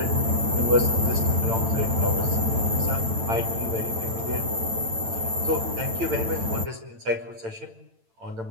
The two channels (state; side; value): late; left; 8.9 ms